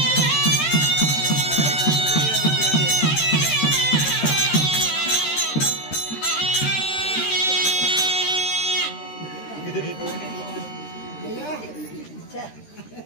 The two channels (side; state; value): right; late; 13 ms